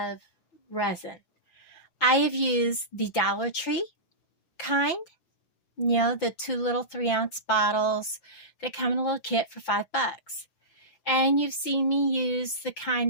resin. I have used the Dollar Tree kind, the 2 little 3-ounce bottles that come in a little kit for $5. And you've seen me use the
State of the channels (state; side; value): late; right; 5.9 ms